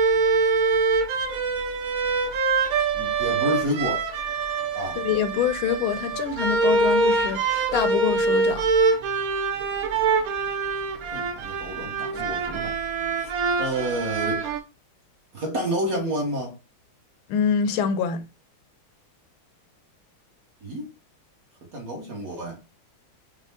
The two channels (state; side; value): normal; both; correlation 0.04